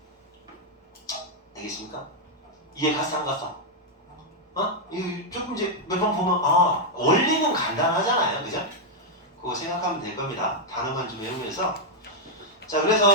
알겠습니까? 이해 갔어 안 갔어? 이거 조금 이제 몇 번 보면 원리는 간단하잖아요. 그죠? 그거 생각하면 될 겁니다. 단어만 좀 외우면서. 자,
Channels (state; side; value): normal; both; correlation -0.02